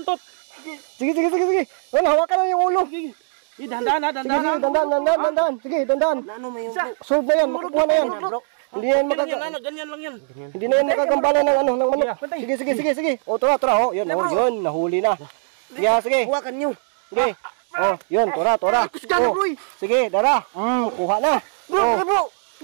Sige. Wala, hawakan lang yung ulo. Ge. Dandan. Dandan. Sige, dandan. Ano mo yung Solve na yan, makakuha na yan. Hindi yan ganyan lang yan. Hindi na yan makagambala ng manok. Sige. O, tura. O, yun, nahuli na. Sige. Hawakan nyo. Sige. O, yun, tura. Kusgan bro. Sige, dara. Kuha na.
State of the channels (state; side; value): silent; left; digital silence